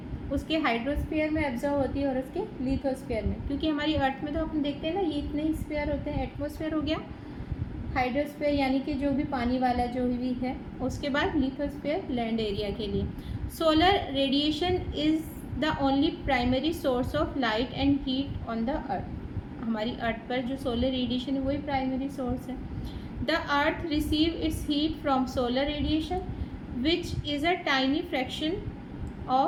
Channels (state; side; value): identical; both; correlation 1.00